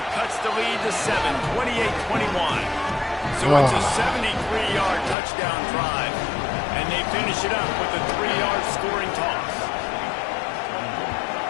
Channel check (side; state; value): right; drops out; at 5.2 s